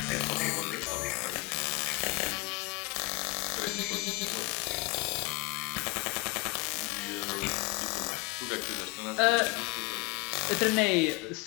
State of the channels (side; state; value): right; quieter; 24.5 dB